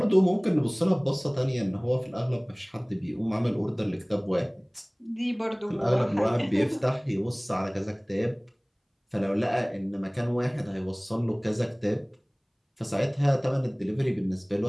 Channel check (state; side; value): identical; both; correlation 1.00